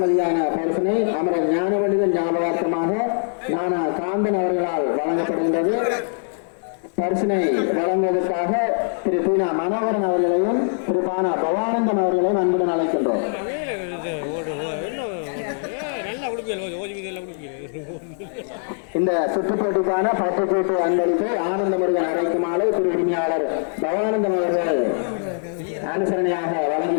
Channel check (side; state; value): right; silent; digital silence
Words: பரிசினை அமரர் ஞானவண்டிதன் ஞாபகார்த்தமாக நானா காந்தன் அவர்களால் வழங்கப்படுகின்றது. பரிசினை வழங்குவதற்காக திரு பீனா மனோகரன் அவர்களையும் திரு பானா பவானந்தம் அவர்களையும் அன்புடன் அழைக்கின்றோம். இந்த சுற்றுப்போட்டிக்கான பட்டுக்கோட்டு அன்பளிப்பை ஆனந்த முருகன் அழைக்குமாறு திரு உரிமையாளர் பவானந்தம் அவர்கள் அனுசரணையாக